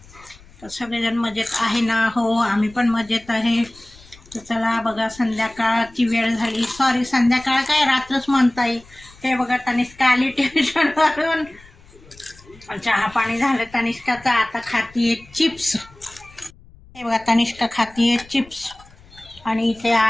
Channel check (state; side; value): noise; left; rumble, 24 dB below the sound